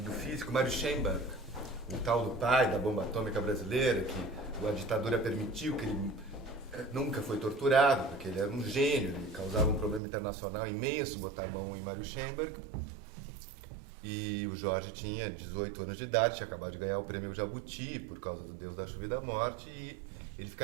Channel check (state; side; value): drops out; left; at 10.0 s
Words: físico, Mário Schemberg, o tal do pai da bomba atômica brasileira, que a ditadura permitiu, que ele nunca foi torturado, porque ele era um gênio, ele causava um problema internacional imenso botar a mão em Mário Schemberg. E o Jorge tinha 18 anos de idade, tinha acabado de ganhar o prêmio Jabuti por causa do Deus da Chuva e da Morte, e ele